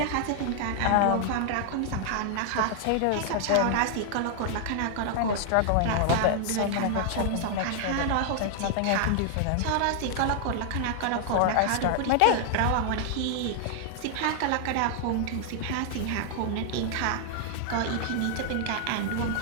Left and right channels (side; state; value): both; different; correlation -0.01